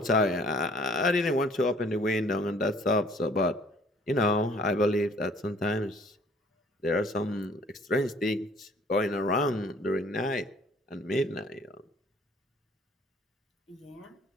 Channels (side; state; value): both; normal; correlation 0.57